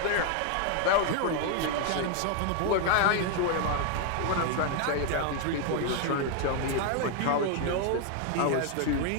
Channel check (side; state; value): both; different; correlation 0.00